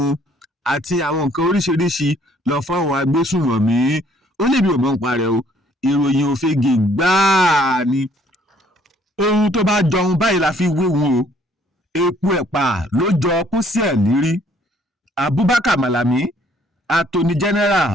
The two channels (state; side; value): normal; both; correlation 0.62